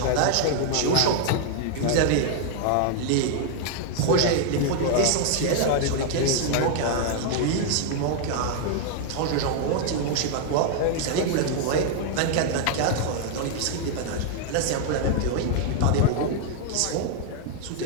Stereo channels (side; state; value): both; different; correlation 0.00